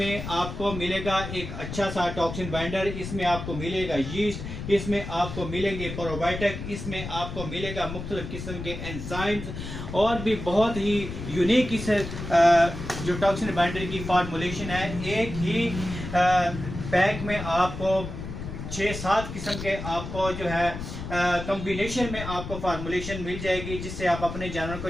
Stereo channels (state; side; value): noise; left; rumble, 8 dB below the sound